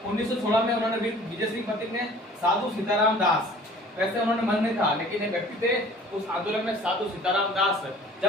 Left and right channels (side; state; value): both; normal; correlation 0.49